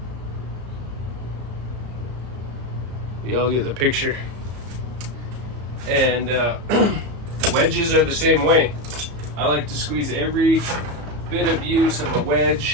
Y'all get the picture. And wedges are the same way. I like to squeeze every bit of use of a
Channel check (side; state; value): left; late; 34 ms